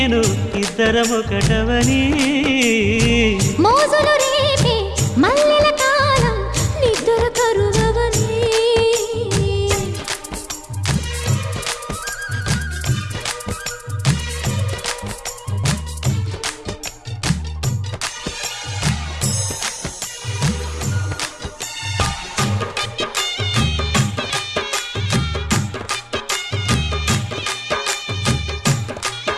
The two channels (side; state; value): both; identical; correlation 1.00